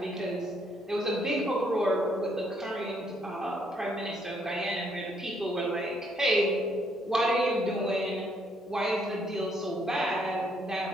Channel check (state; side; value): normal; both; correlation 0.71